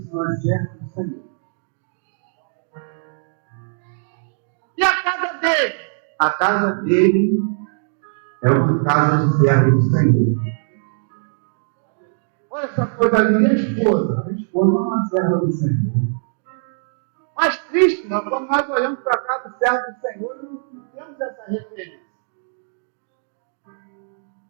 não é servo do Senhor. E a casa dele? A casa dele é uma casa de servo do Senhor. Olha essa coisa ali, minha esposa. A esposa não é uma serva do Senhor. Mas triste, não, quando nós olhamos para a casa do servo do Senhor, não temos essa referência.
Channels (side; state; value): left; silent; digital silence